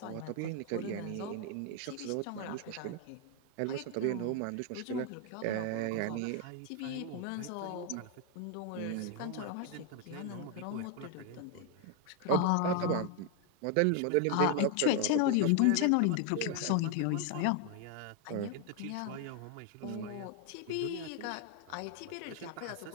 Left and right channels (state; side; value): different; both; correlation 0.01